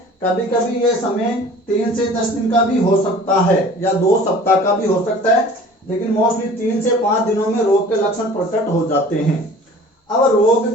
कभी कभी ये समय 3 से 10 दिन का भी हो सकता है या 2 सप्ताह का भी हो सकता है, लेकिन मोस्टली 3 से 5 दिनों में रोग के लक्षण प्रकट हो जाते हैं। अब रोग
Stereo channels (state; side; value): normal; both; correlation 0.46